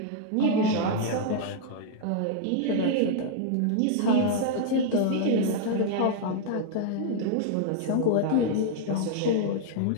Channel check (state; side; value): different; both; correlation -0.01